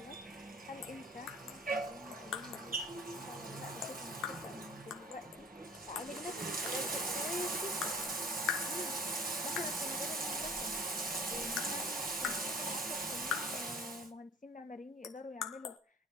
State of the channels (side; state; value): both; normal; correlation 0.47